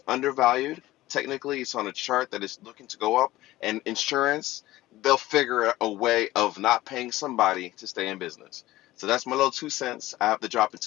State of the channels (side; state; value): right; quieter; 16.8 dB